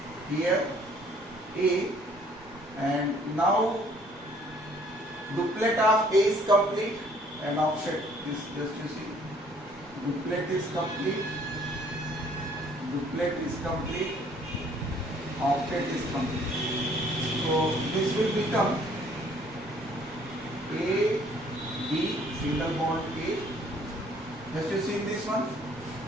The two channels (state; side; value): normal; both; correlation 0.60